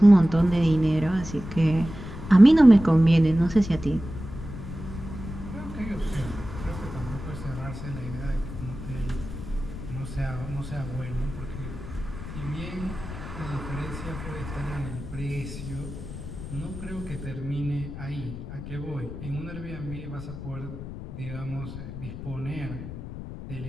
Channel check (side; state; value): left; noise; rumble, 10 dB below the sound